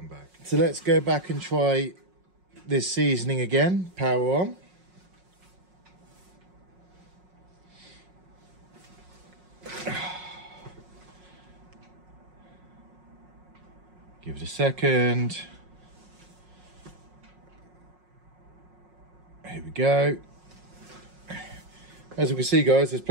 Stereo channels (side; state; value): left; late; 5.5 ms